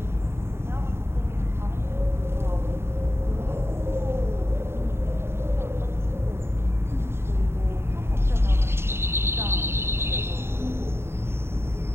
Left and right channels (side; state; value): left; late; 0.12 ms